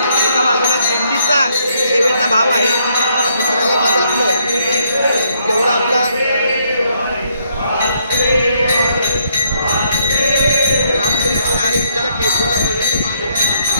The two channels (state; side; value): inverted; both; correlation -0.72